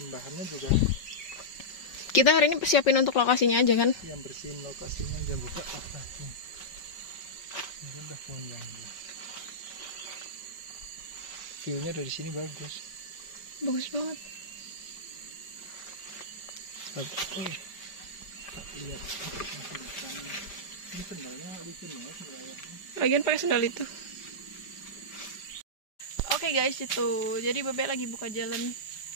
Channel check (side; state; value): right; late; 5.5 ms